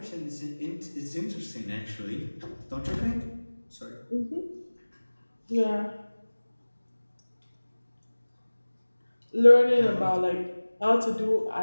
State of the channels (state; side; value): inverted; both; correlation -1.00